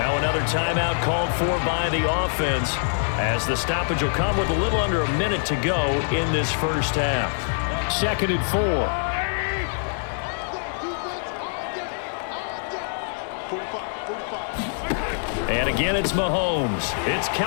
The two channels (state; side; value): silent; right; digital silence